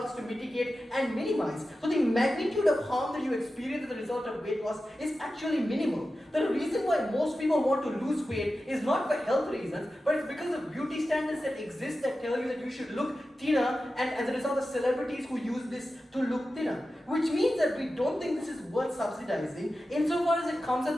to mitigate and minimize. So the magnitude of harm that you experience as a result of weight loss is actually minimal. The reason why most people want to lose weight is not for health reasons, but it's because of beauty standards that exist that tell you that you should look thinner, and as a result of celebrities who use this to look thinner. Which means that we don't think this is worth subsidizing, insofar as it comes at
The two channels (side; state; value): both; normal; correlation 0.93